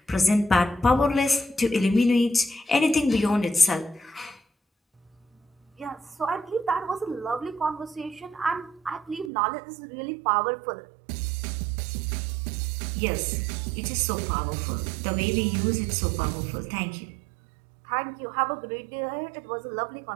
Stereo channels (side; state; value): left; drops out; at 9.3 s